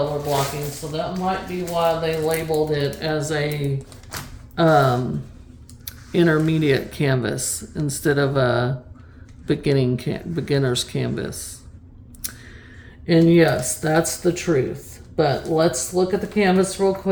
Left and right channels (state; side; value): identical; both; correlation 1.00